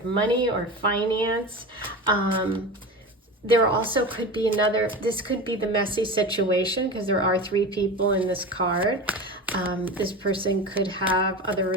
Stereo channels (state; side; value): normal; both; correlation 0.29